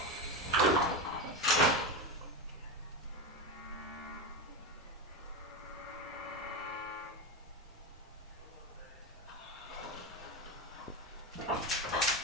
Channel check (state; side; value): normal; both; correlation 0.17